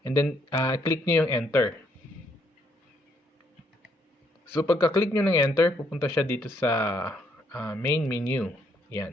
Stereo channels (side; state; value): both; normal; correlation 0.71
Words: And then, click nyo yung enter. So, pagka-click nyo ng enter, pupunta siya dito sa main menu.